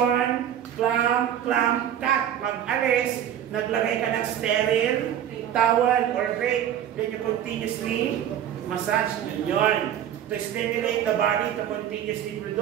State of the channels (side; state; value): left; quieter; 10.3 dB